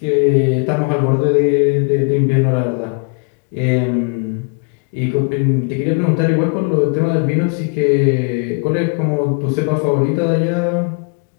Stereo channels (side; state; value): right; quieter; 35.2 dB